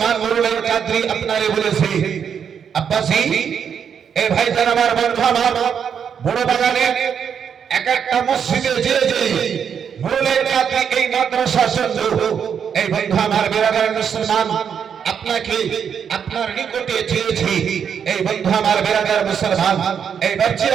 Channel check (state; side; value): quieter; left; 7.6 dB